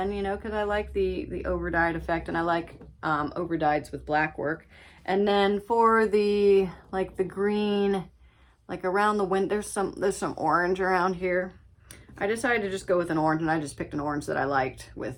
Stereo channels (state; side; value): identical; both; correlation 1.00